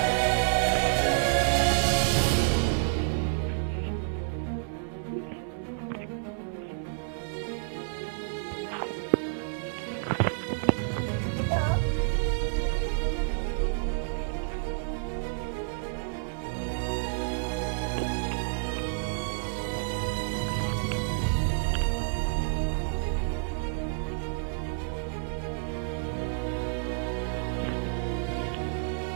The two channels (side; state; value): left; silent; digital silence